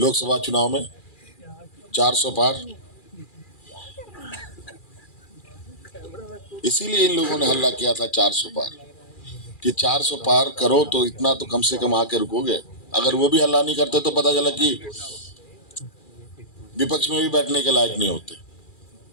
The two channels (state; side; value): late; right; 2.4 ms